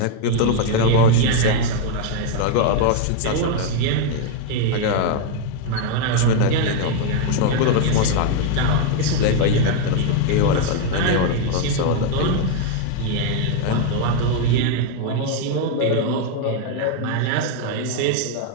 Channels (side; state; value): both; different; correlation 0.00